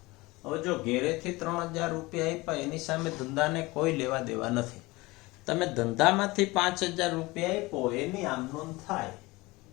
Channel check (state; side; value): quieter; right; 22.0 dB